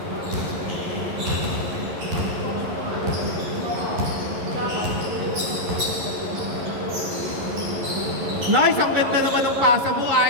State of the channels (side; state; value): left; late; 11 ms